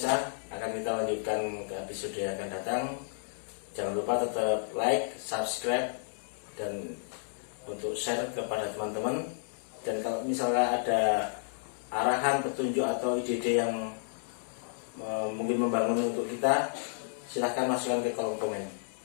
akan kita lanjutkan ke episode yang akan datang. Jangan lupa tetap like, subscribe, dan untuk share kepada teman-teman. Dan kalau misalnya ada arahan, petunjuk atau ide-ide yang mungkin membangun untuk kita, silahkan masukkan ke kolom komen.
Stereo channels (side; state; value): right; silent; digital silence